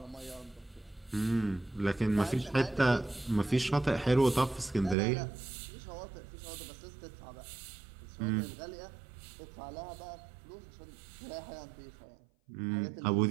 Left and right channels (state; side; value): drops out; left; at 5.0 s